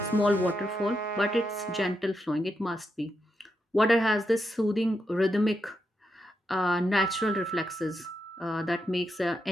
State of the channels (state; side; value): normal; both; correlation 0.84